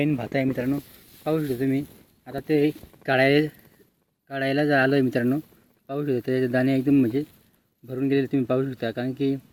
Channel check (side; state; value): both; identical; correlation 1.00